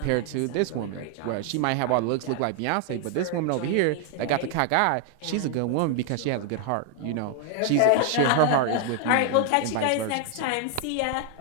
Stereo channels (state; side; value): different; both; correlation 0.00